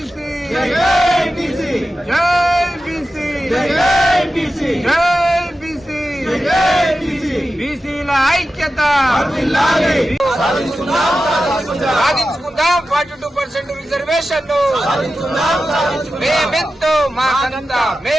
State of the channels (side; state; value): both; normal; correlation 0.93